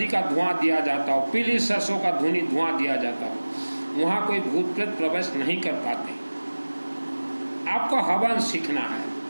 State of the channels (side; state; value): both; inverted; correlation -1.00